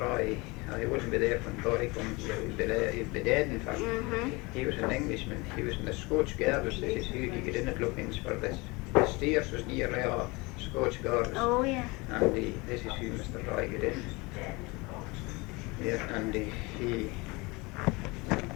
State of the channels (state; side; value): quieter; right; 25.2 dB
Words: he wouldn't be there when Boy comes here, he'd be dead in fact. He was an Englishman, he was in the Scotch Gardens. This is who he got in at Loughinch for this. The stairs was nearly all Scotch Gardens. Oh, yeah. And this is who Mr. Roy got in. Yeah, and he